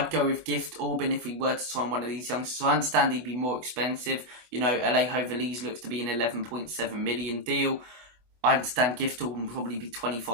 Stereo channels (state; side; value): late; left; 24 ms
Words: go with Gift Orban if we were to sign one of these youngsters. So I understand he'd be more expensive. Alejo Véliz looks to be an 11.7 million deal. I understand Gift Orban will probably be